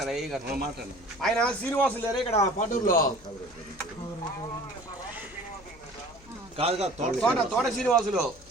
ఏ గారు? ఆయన శ్రీనివాసులు లేరా ఇక్కడ పాటూరులో? తోట శ్రీనివాసులు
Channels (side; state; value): left; noise; hum, 24 dB below the sound